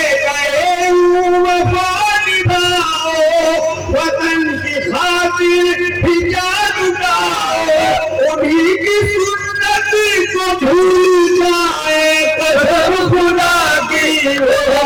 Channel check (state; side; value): identical; both; correlation 1.00